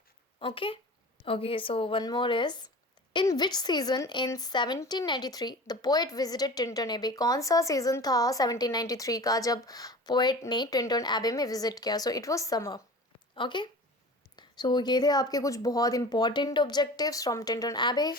Okay okay, so one more is in which season in 1793 the poet visited Tintern Abbey? कौन सा सीजन था 1793 का जब पोएट ने टिंटन एबे में विजिट किया? So it was summer. Okay, so ये थे आपके कुछ बहुत इंपॉर्टेंट ऑब्जेक्टिव्स फ्रॉम टिंटन एबे.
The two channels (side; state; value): both; normal; correlation 0.37